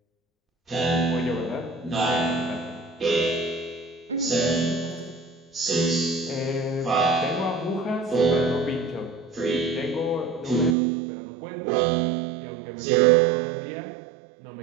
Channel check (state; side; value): drops out; left; at 10.8 s